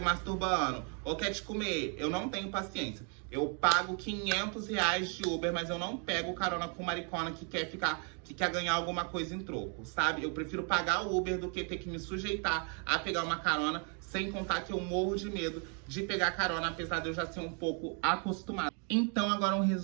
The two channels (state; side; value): quieter; left; 39.4 dB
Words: ou quer te comer. Eu não tenho paciência. Eu pago R$ 500 de Uber, mas eu não pego carona com maricona que quer ganhar alguma coisa em troco, sabe? Eu prefiro pagar o Uber do que ter que me sujeitar a pegar uma carona, sem contar que eu morro de medo de pegar carona, apesar de eu já ser um pouco acostumado. Então, agora um